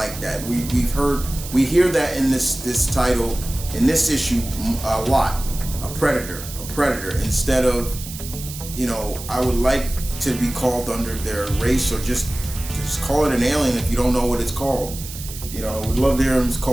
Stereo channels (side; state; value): right; noise; hiss, 12 dB below the sound